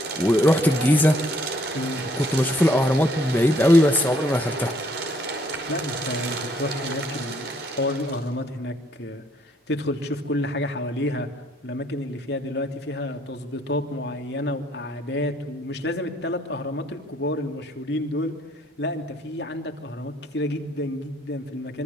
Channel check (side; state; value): both; normal; correlation 0.66